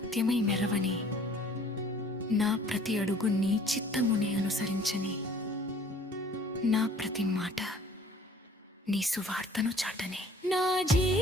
మెరవని, నా ప్రతి అడుగు నీ చిత్తముని అనుసరించని, నా ప్రతి మాట నీ సువార్తను చాటని. నా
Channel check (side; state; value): both; normal; correlation 0.53